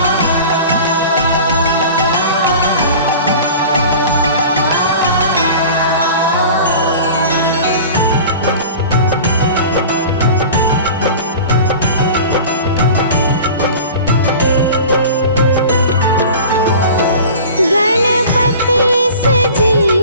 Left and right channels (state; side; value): inverted; both; correlation -0.39